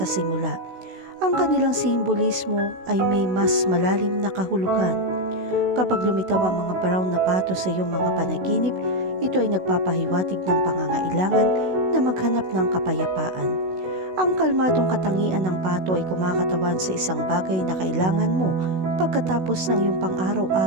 simula, ang kanilang simbolismo ay may mas malalim na kahulugan. Kapag lumitaw ang mga brown na pato sa iyong mga panaginip, ito ay nagpapahiwatig ng pangangailangan na maghanap ng kapayapaan. Ang kalmadong katangian ng pato ay kumakatawan sa isang bagay na kailangan mo pagkatapos ng iyong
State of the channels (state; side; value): late; left; 16 ms